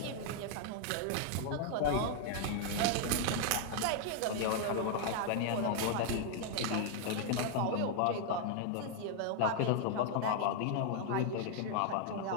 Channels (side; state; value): both; different; correlation 0.00